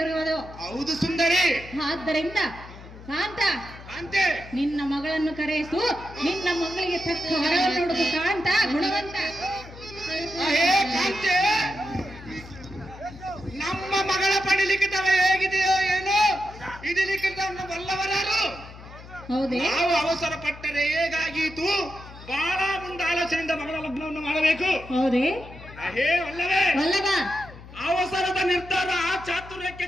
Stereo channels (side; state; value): left; noise; hum, 17 dB below the sound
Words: ಇರುವುದು. ಹೌದು ಸುಂದರಿ. ಆದ್ದರಿಂದ ಕಾಂತ, ಕಾಂತೆ, ನಿನ್ನ ಮಗಳನ್ನು ಕರೆಯಿಸು, ನಿನ್ನ ಮಗಳಿಗೆ ತಕ್ಕ ವರವನ್ನು ನೋಡುವುದು. ಕಾಂತ ಗುಣವಂತ. ಹೇ ಕಾಂತೆ, ನಮ್ಮ ಮಗಳ ಪಡಿಲಿಕ್ಕಿತವ ಹೇಗಿದೆಯೋ ಏನೋ, ಇದು ಲಿಖಿತವನ್ನು ಬಲ್ಲವರಾರು. ಹೌದೇ? ನಾವು ಅವಸರ ಪಟ್ಟರೆ ಹೇಗಾಗೀತು? ಬಹಳ ಮುಂದೆ ಆಲೋಚನೆಯಿಂದ ಮಗಳ ಲಗ್ನವನ್ನು ಮಾಡಬೇಕು. ಹೌದೇ? ಹೇ ಅಲ್ಲವೇ? ವಲ್ಲಭ, ಅವಸರದ ನಿರ್ಧಾರ ಚಾತುರ್ಯಕ್ಕೆ